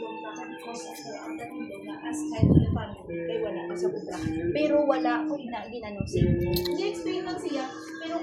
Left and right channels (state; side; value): identical; both; correlation 1.00